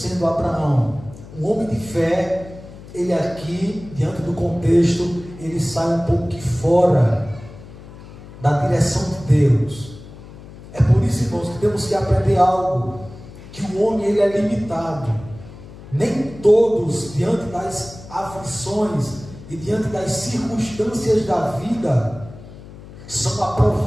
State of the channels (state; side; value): noise; left; hum, 17 dB below the sound